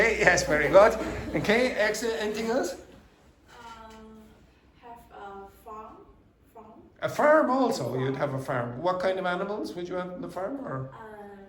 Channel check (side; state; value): both; identical; correlation 1.00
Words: yes, very good. Okay, excellent. Anything else? Have a farm. A farm also. You'd have a farm. What kind of animals would you have on the farm? Or